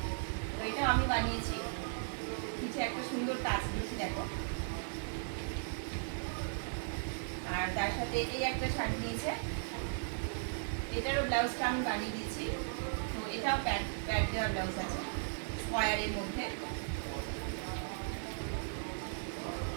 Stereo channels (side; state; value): left; silent; digital silence